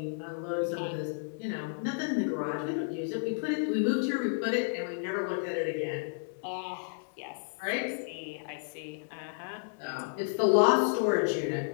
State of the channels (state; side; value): silent; right; digital silence